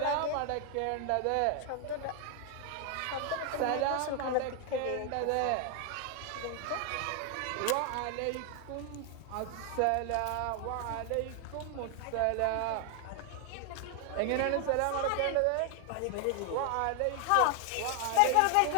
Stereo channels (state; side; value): different; both; correlation 0.00